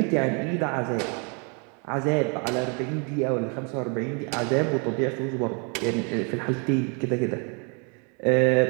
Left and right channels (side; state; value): left; quieter; 35.8 dB